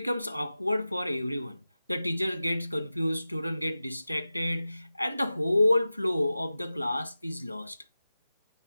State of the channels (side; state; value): both; inverted; correlation -0.95